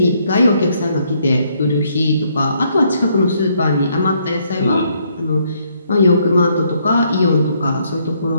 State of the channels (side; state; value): both; inverted; correlation -0.71